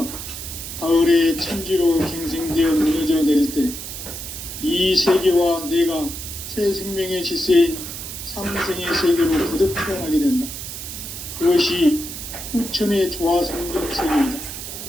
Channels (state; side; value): noise; right; hiss, 9 dB below the sound